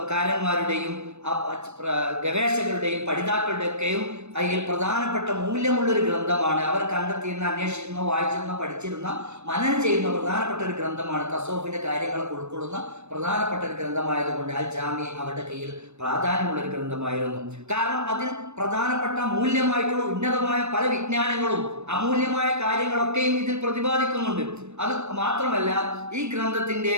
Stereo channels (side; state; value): left; late; 0.81 ms